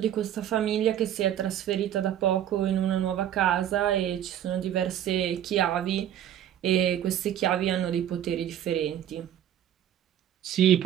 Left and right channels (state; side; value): quieter; left; 10.8 dB